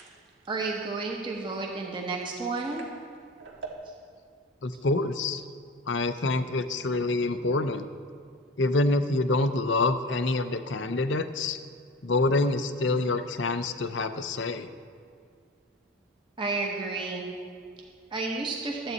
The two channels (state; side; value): normal; both; correlation 0.33